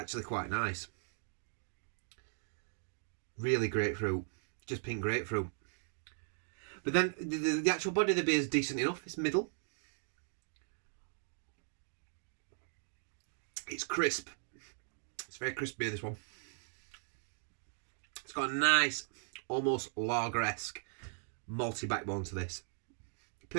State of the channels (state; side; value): silent; left; digital silence